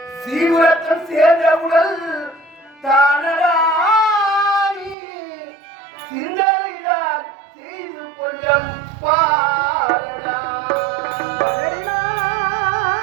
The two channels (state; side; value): drops out; left; at 5.0 s